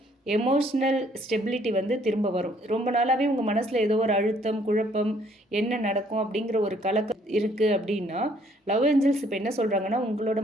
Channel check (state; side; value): normal; both; correlation 0.64